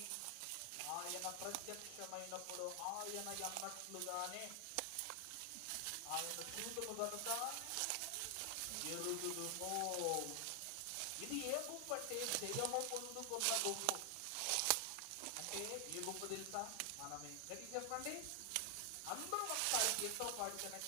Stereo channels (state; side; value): different; both; correlation 0.00